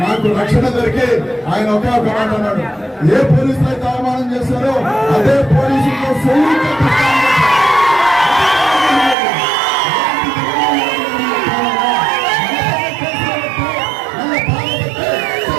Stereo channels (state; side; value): drops out; left; at 9.2 s